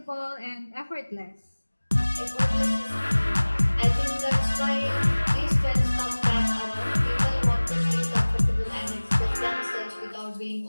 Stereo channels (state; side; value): inverted; both; correlation -1.00